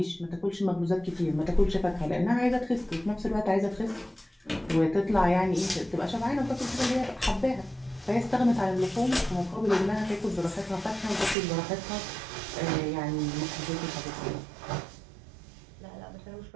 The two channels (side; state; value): left; drops out; at 11.4 s